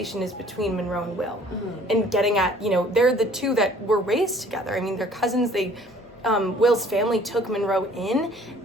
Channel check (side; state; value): both; normal; correlation 0.55